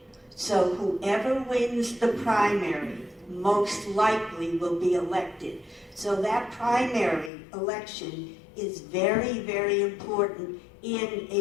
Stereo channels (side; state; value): right; drops out; at 7.3 s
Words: So whoever wins the primary most likely will be elected. So that primary election is very, very important in